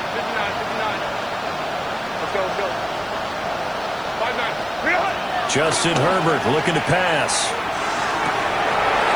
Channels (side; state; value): left; noise; hiss, 28 dB below the sound